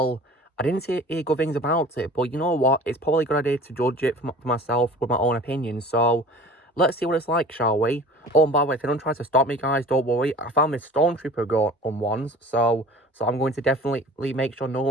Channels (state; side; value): normal; both; correlation 0.42